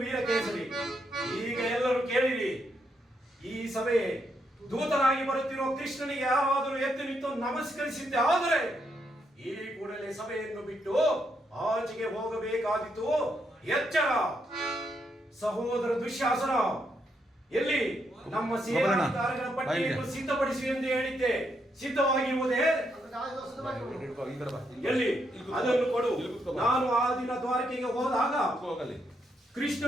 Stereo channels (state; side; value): normal; both; correlation 0.78